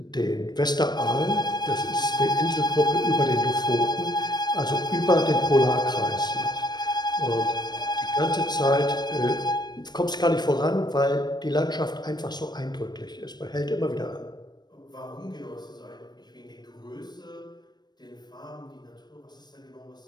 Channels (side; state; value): right; late; 0.20 ms